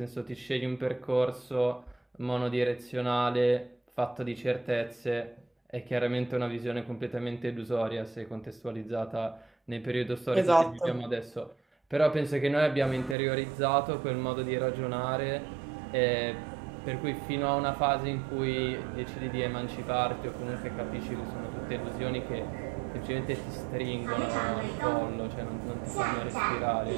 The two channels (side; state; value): left; drops out; at 13.2 s